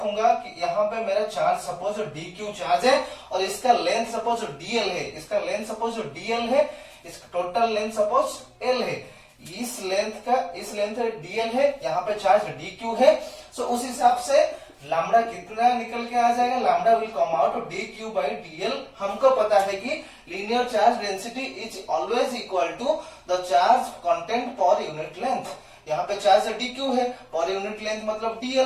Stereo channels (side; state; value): both; identical; correlation 1.00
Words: कि यहाँ पे मेरा चार्ज सपोज dq चार्ज है, और इसका लेंथ सपोज dl है, इसका टोटल लेंथ सपोज l है, इस लेंथ dl है, यहाँ पे चार्ज dq है। सो उस हिसाब से लैम्डा कितना निकल के आ जाएगा? Lambda will come out dq by dl। हमको पता है कि linear charge density is always equal to the charge content per unit length. यहाँ पे चार्ज dq है, पर यूनिट लेंथ मतलब